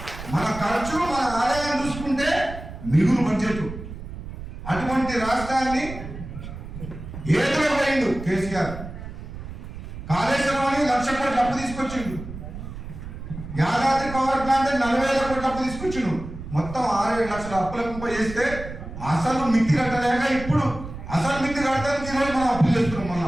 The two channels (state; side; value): noise; right; rumble, 11 dB below the sound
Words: మన ఖర్చు, మన ఆదాయం చూసుకుంటే మిగులు బడ్జెట్. అటువంటి రాష్ట్రాన్ని ఏదో పోయిండు కేసీఆర్. కాళేశ్వరం అని 1,00,000 కోట్ల అప్పు తీసుకొచ్చిండు. యాదాద్రి పవర్ ప్లాంట్ 40,000 కోట్ల అప్పు తీసుకొచ్చిండు. మొత్తం 6-7 లక్షల అప్పుల కుంప చేస్తే అసలు మిత్తి కట్టలేక ఇప్పుడు అసలు మిత్తి కట్టడానికి ఈరోజు మనం అప్పులు చేస్తున్నాం.